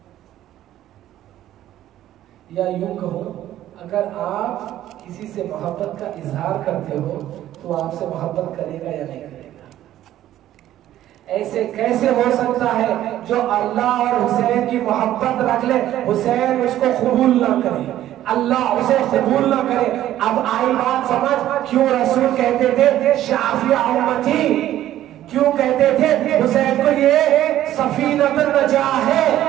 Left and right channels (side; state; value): left; quieter; 12.9 dB